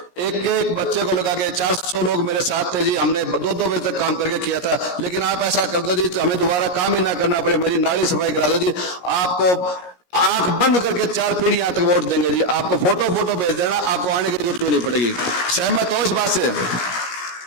एक बच्चे को लगा के 400 लोग मेरे साथ थे जी, हमने 2-2 बजे तक काम करके किया था। लेकिन आप ऐसा कर दो जी तो हमें दोबारा काम ही ना करना पड़े, मेरी नाली सफाई करा दो जी। आपको आंख बंद करके 4 पीढ़ियां तक वोट देंगे जी। आपको फोटो भेज देना, आपको आने की जरूरत नहीं पड़ेगी। सहमत हो इस बात से?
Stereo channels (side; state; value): right; late; 17 ms